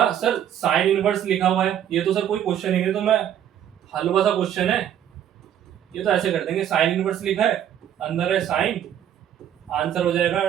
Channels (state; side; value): quieter; left; 10.2 dB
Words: सर साइन इनवर्स लिखा हुआ है, ये तो सर कोई क्वेश्चन ही नहीं, तो मैं हलवा सा क्वेश्चन है, ये तो ऐसे कर देंगे, साइन इनवर्स लिखा है, अंदर है साइन, आंसर हो जाएगा